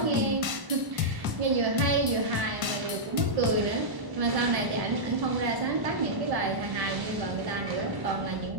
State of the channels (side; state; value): left; late; 1.1 ms